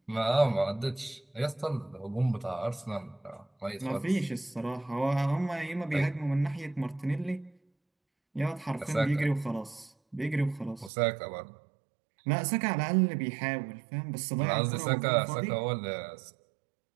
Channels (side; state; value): left; drops out; at 10.9 s